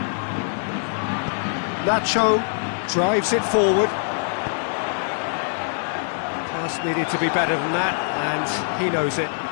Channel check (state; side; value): silent; right; digital silence